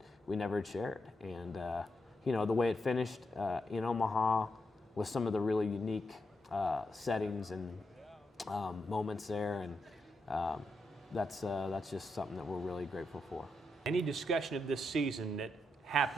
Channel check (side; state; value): both; normal; correlation 0.84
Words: we never had shared, and the way it finished in Omaha with some of the really unique settings and moments there, and that's just something that we're really grateful for. Any discussion of this season that